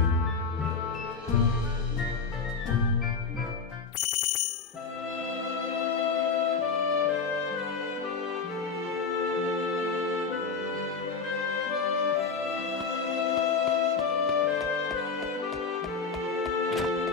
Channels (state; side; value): quieter; right; 5.0 dB